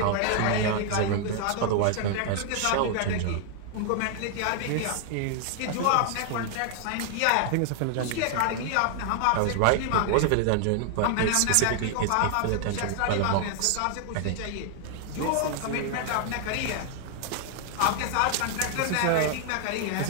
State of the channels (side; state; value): both; different; correlation 0.00